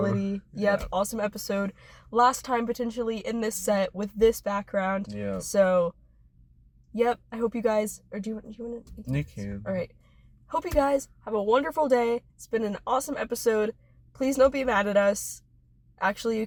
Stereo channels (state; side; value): identical; both; correlation 1.00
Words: Yep, awesome episode. Last time potentially in this set with this background. Yeah. So, yep, I hope you guys... Or do you want to... You can. All right. Hope you guys have a wonderful day. It's been an awesome episode. Please don't be mad at us. Actually, you